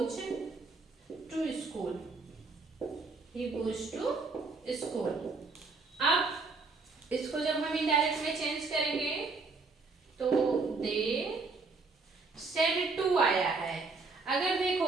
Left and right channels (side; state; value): left; quieter; 4.0 dB